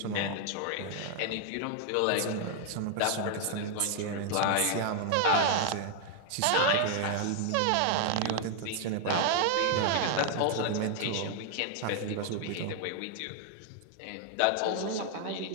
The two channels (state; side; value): different; both; correlation 0.00